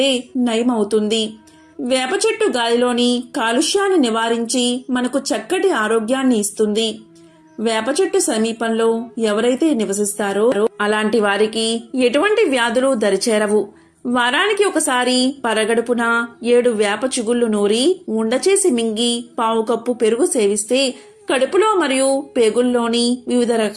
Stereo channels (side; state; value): both; identical; correlation 1.00